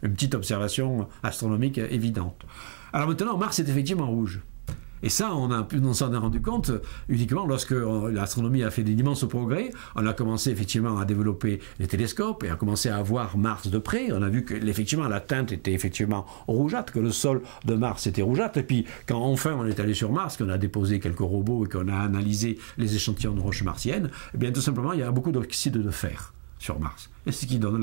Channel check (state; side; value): silent; left; digital silence